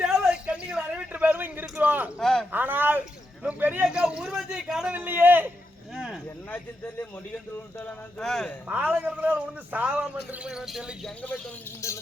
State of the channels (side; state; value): both; normal; correlation 0.85